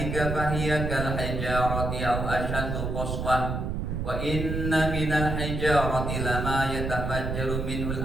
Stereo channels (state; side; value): noise; right; rumble, 2 dB below the sound